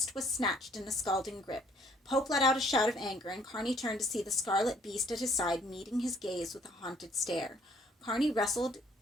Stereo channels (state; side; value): normal; both; correlation 0.62